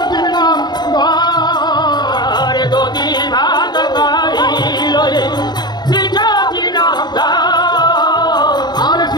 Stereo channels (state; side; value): late; right; 0.20 ms